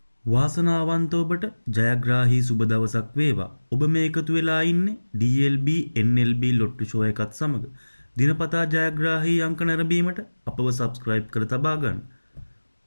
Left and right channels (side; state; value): both; inverted; correlation -1.00